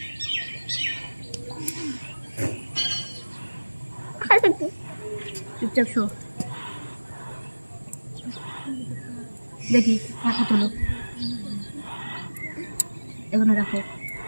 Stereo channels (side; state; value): both; inverted; correlation -1.00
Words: চুপচাপ শো। দেখি মাথা তোলো, এখানে রাখো।